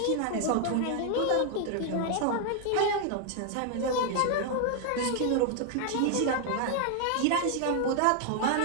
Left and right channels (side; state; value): both; different; correlation 0.00